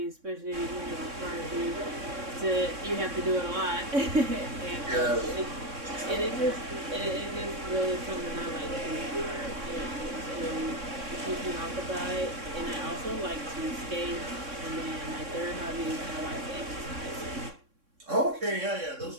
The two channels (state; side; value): late; left; 3.6 ms